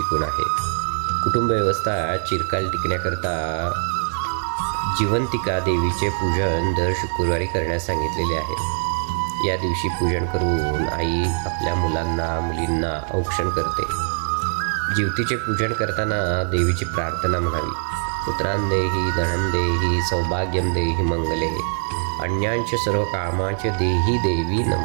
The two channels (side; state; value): left; silent; 64 dB below the other